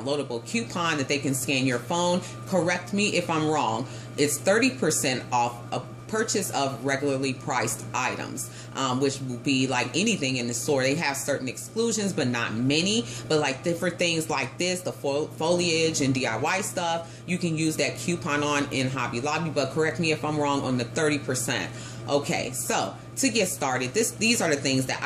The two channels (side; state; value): both; identical; correlation 1.00